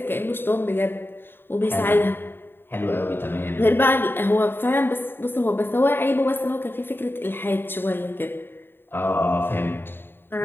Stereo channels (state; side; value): late; right; 0.10 ms